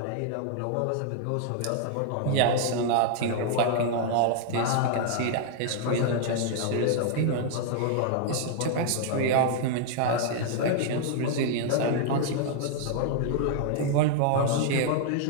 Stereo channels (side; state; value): both; different; correlation -0.01